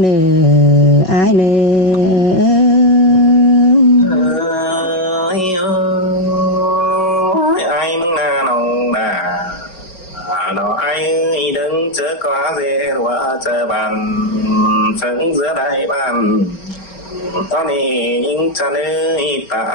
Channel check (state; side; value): late; right; 5.4 ms